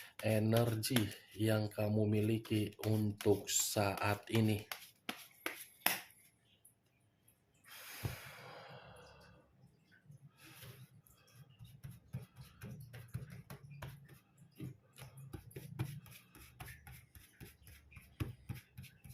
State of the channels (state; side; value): identical; both; correlation 1.00